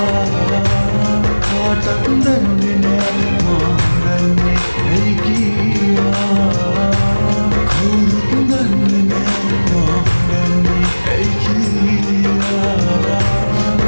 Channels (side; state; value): both; inverted; correlation -1.00